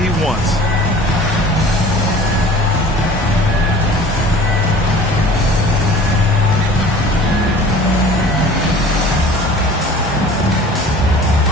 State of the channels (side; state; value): both; normal; correlation 0.45